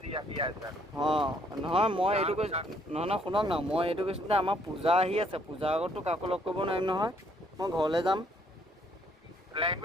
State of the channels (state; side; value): normal; both; correlation 0.66